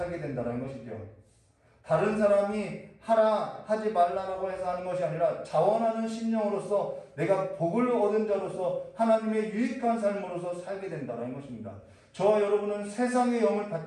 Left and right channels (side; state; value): both; identical; correlation 1.00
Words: 된다는 것이죠. 다른 사람이 하라 하지 말라라고 해서 하는 것이 아니라 자원하는 심령으로서 내가 복을 얻은 자로서 하나님의 유익한 삶으로서 살게 된다는 것입니다. 저와 여러분은 세상의 영을